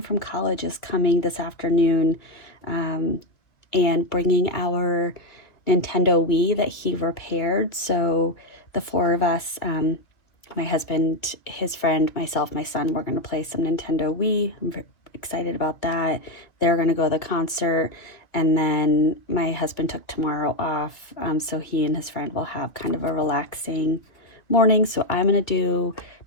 from college is coming this afternoon and bringing our Nintendo Wii that he repaired. So the 4 of us, my husband, his friend, myself, my son, we're going to play some Nintendo Wii. I'm very excited about that. They're going to go to the concert. And then my husband took tomorrow off, so he and his friend will have kind of a relaxing morning. So I'm going to do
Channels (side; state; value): right; late; 2.2 ms